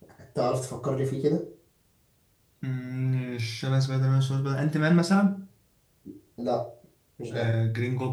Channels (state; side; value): identical; both; correlation 1.00